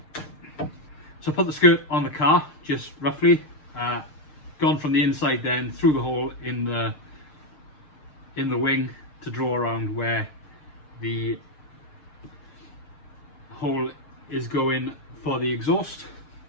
So I put the skirt on the car, just roughly, gone from the inside then through the hole in the wing to draw around where the hole is going for the exhaust.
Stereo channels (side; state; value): right; late; 6.6 ms